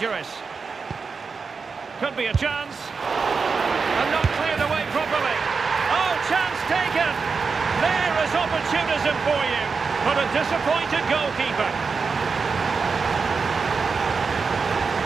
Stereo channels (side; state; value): left; quieter; 5.0 dB